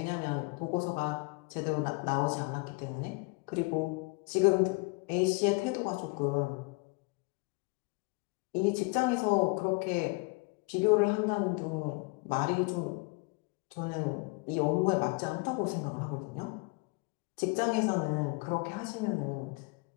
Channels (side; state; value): right; quieter; 28.5 dB